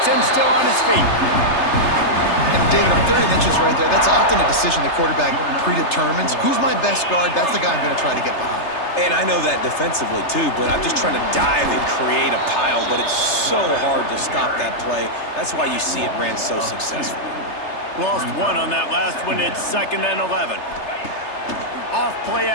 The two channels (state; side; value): late; right; 3.3 ms